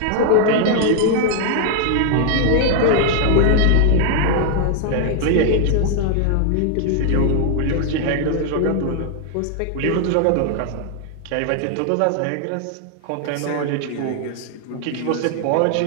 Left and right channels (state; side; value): different; both; correlation 0.00